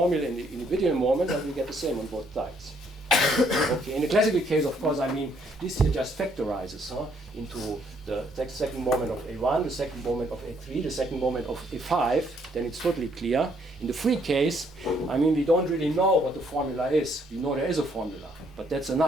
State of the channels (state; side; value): normal; both; correlation 0.68